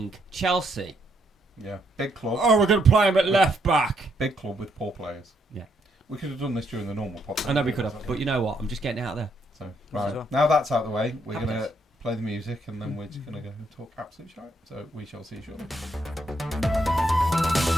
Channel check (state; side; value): normal; both; correlation 0.74